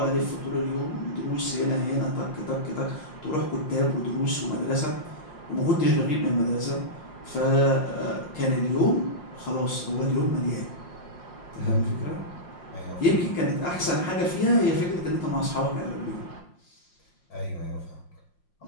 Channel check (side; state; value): right; late; 5.7 ms